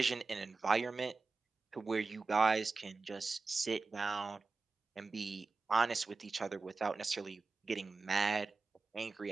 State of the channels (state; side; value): quieter; left; 4.0 dB